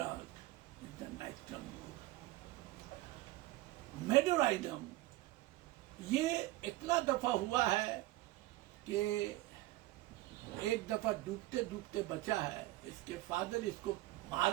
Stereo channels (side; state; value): left; quieter; 17.9 dB